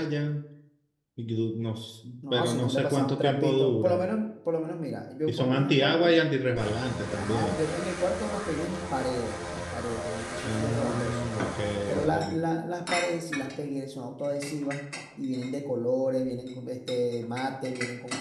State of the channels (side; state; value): both; identical; correlation 1.00